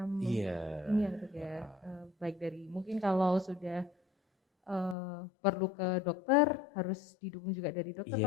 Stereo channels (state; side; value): drops out; right; at 5.0 s